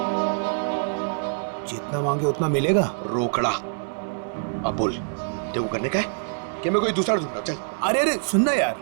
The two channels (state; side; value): silent; left; digital silence